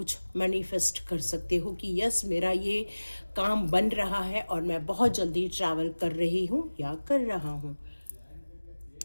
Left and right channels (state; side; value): inverted; both; correlation -1.00